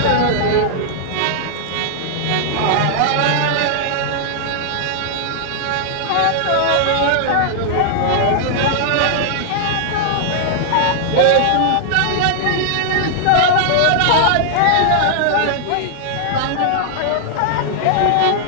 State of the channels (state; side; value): different; both; correlation -0.01